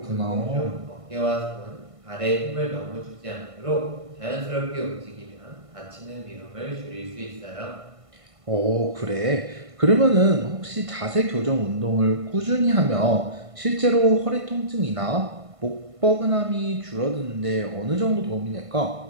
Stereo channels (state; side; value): late; left; 1.5 ms